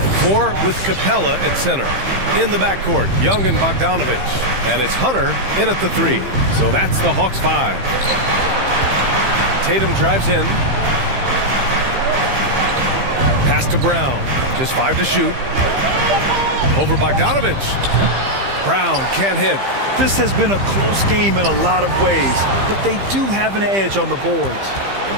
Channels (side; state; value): left; late; 15 ms